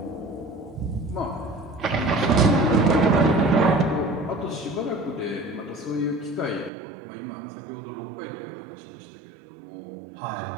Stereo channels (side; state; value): left; drops out; at 6.7 s